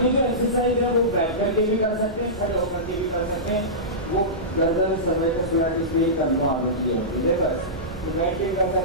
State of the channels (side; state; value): both; normal; correlation -0.18